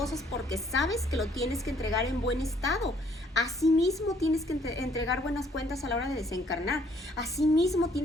porque sabes que lo tienes que entregar en buen estado. Asimismo tienes que entregar buenas cuentas a la hora de desencarnar. Asimismo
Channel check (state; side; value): normal; both; correlation 0.64